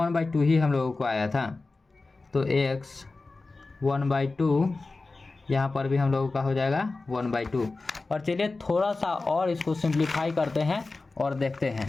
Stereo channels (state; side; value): quieter; right; 3.6 dB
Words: ही हम लोगों को आया था। तो x 1/2 यहाँ पर भी हम लोगों का हो जाएगा 1/2। और चलिए थोड़ा सा और इसको सिंप्लीफाई करते हैं और देखते हैं।